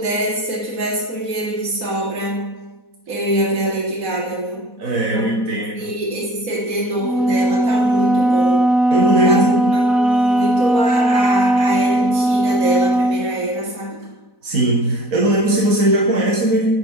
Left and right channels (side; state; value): left; late; 4.1 ms